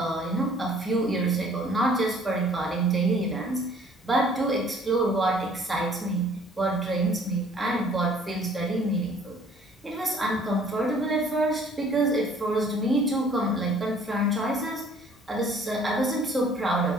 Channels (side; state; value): both; normal; correlation 0.56